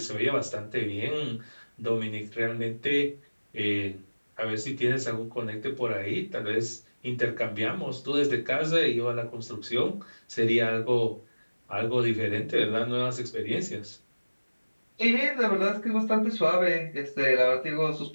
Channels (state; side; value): inverted; both; correlation -1.00